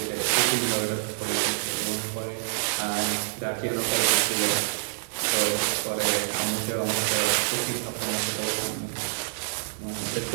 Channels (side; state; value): left; silent; digital silence